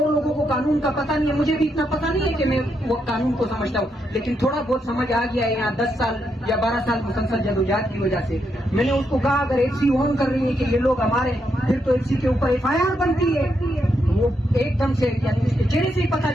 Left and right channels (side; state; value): both; normal; correlation 0.80